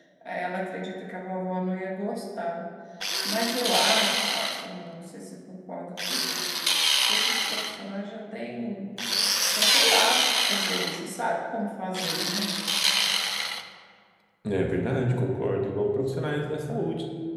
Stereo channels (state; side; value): identical; both; correlation 1.00